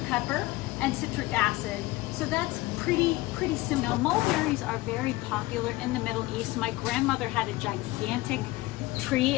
pepper, and citric acid. So that's pretty simple. Now, mulberries are very popular in the Middle East. My grandmother had a gigantic tree,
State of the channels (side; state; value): right; quieter; 19.5 dB